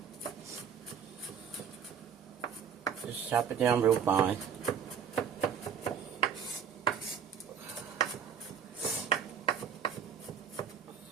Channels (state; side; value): quieter; left; 7.7 dB